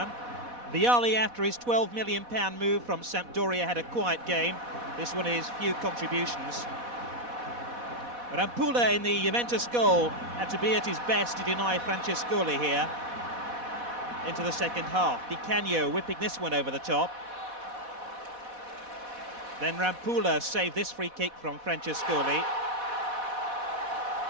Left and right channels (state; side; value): late; left; 4.1 ms